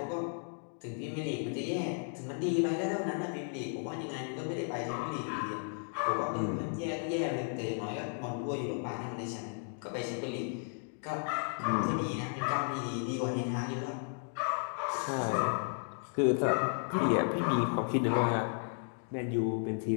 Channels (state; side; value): silent; right; 55 dB below the other